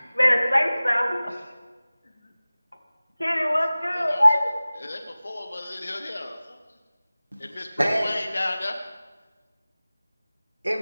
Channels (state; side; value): inverted; both; correlation -0.98